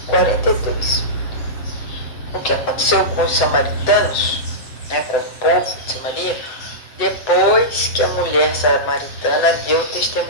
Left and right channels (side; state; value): right; late; 8.3 ms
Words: O que aconteceu com os samaritanos, com o povo de Samaria, depois que a mulher samaritana deu o